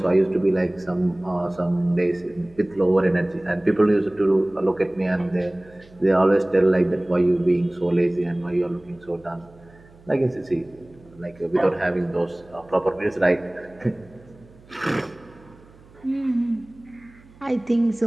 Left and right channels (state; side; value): noise; right; hum, 25 dB below the sound